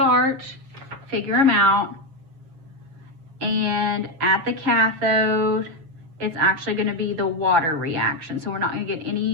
figure them out. And at the cathode, it's actually going to be the water reaction. So we're not going to get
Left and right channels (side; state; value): left; late; 7.2 ms